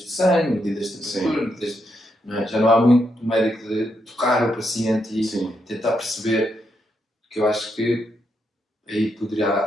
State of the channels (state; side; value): normal; both; correlation 0.80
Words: sangue, medidas de temperatura, não é? Já não há muito do médico de tocar o paciente e tentar perceber, que eu acho que aí poderia